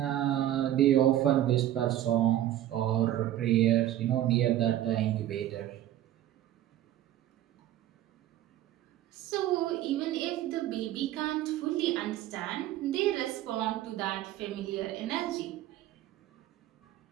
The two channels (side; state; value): left; quieter; 13.0 dB